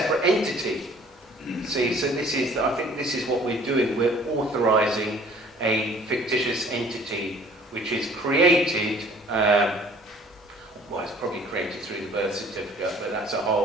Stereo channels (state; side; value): normal; both; correlation 0.53